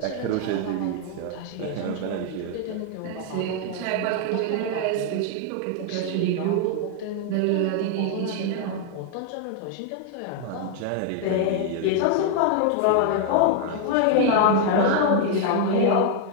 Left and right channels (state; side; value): different; both; correlation 0.00